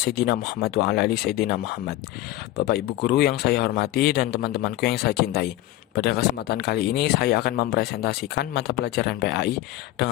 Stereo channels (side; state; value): right; quieter; 15.4 dB